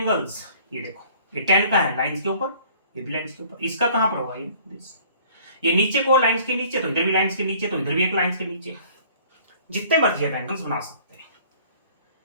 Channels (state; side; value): inverted; both; correlation -0.53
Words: ये देखो, ये 10 का है लाइंस के ऊपर, ये भी लाइंस के ऊपर, इसका कहां पर होगा, ये दिस। ये नीचे को लाइंस के नीचे, तो इधर भी लाइंस के नीचे, तो इधर भी एक लाइंस के नीचे, जितने मर्जी आप एंगल्स बना सकते हैं।